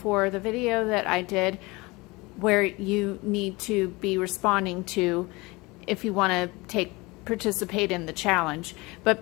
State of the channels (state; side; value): quieter; right; 23.7 dB